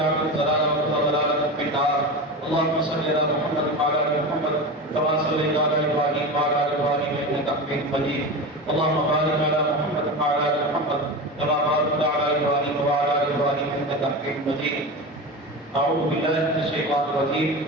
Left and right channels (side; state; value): both; normal; correlation 0.25